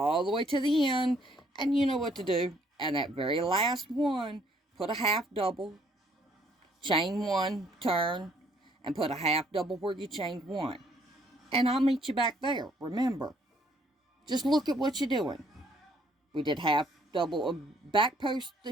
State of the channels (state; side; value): normal; both; correlation 0.65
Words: the way to the end, and you know what to do. And that very last one, put a half double, chain 1, turn, and put a half double where you chained 1. And I'll meet you back there. Remember, just look at what you're doing. We did half double, back post